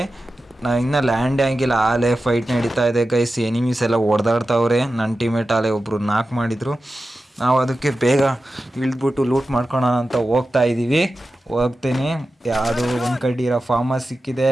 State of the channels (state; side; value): normal; both; correlation 0.93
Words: ನಾವು ಇನ್ನೂ ಲ್ಯಾಂಡ್ ಆಗಿಲ್ಲ, ಆಲೇ ಫೈಟ್ ನಡೀತಾ ಇದೆ ಗೈಸ್. ಎನಿಮೀಸ್ ಎಲ್ಲ ಹೊಡೆದಾಡ್ತಾವ್ರೆ. ನನ್ನ ಟೀಮೇಟ್ ಆಲೇ ಒಬ್ಬರು ನಾಕ್ ಮಾಡಿದರು. ನಾವು ಅದಕ್ಕೆ ಬೇಗ ಇಳಿದ್ಬಿಟ್ಟು ಲೂಟ್ ಮಾಡ್ಕೊಳೋಣ ಅಂತ ಹೋಗ್ತೀನಿ. ಯಾವುದೋ ಒಂದು ಕಡ್ಡಿರೋ ಫಾರ್ಮಸ್ ಸಿಕ್ಕಿದೆ,